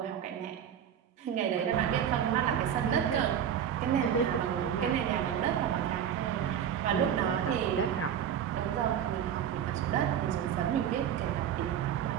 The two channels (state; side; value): quieter; left; 9.1 dB